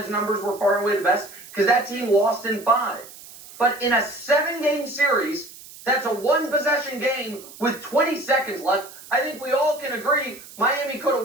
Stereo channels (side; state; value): right; noise; hiss, 18 dB below the sound